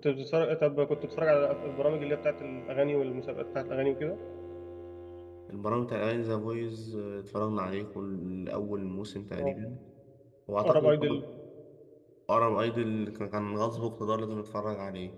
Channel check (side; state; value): both; identical; correlation 1.00